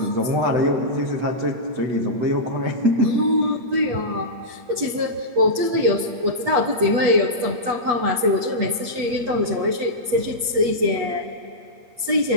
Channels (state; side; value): late; left; 8.3 ms